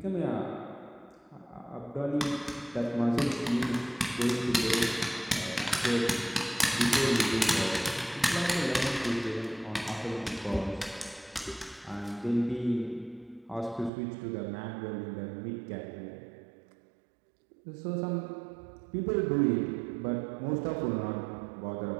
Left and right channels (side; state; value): left; drops out; at 13.9 s